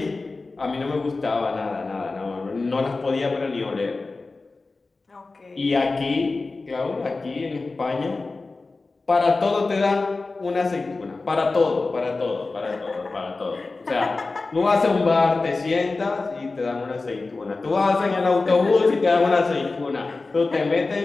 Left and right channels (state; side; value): quieter; right; 3.6 dB